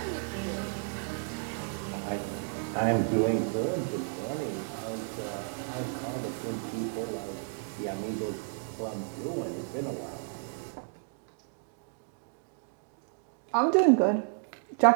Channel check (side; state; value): left; silent; 56 dB below the other